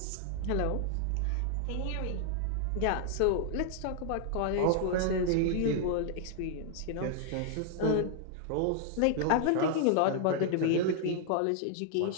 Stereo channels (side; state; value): both; different; correlation -0.01